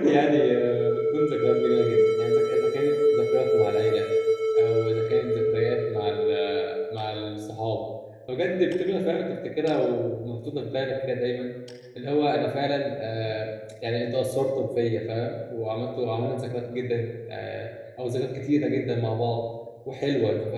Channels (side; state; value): both; identical; correlation 1.00